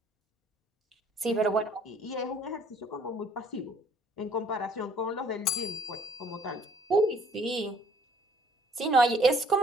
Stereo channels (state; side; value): normal; both; correlation 0.59